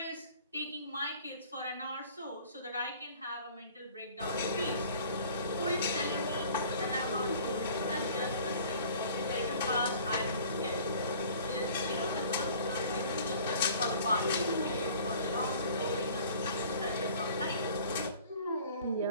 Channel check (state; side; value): inverted; both; correlation -0.49